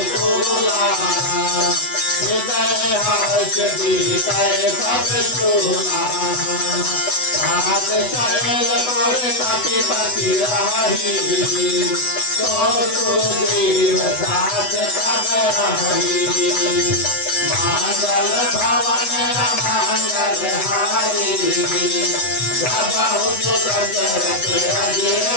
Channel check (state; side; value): late; right; 8.0 ms